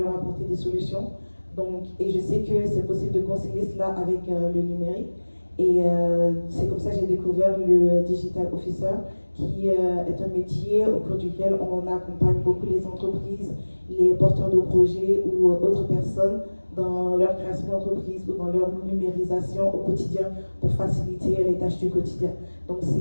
apporter des solutions. Donc, et je sais que c'est possible de concilier cela avec le numérique. Et c'est comme ça que j'ai découvert le Digital Officer, qui est un métier au cours duquel on accompagne beaucoup les entreprises, les porteurs de projets ou autres personnes dans leur création d'entreprise ou dans leur numérisation au quotidien pour faciliter les tâches du quotidien. Donc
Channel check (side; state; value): both; inverted; correlation -1.00